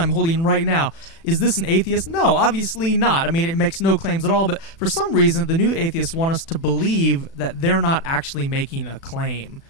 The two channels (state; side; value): late; right; 36 ms